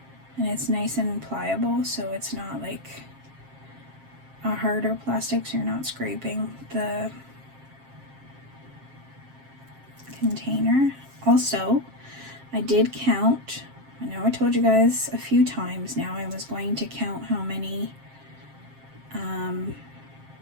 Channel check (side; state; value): left; late; 7.5 ms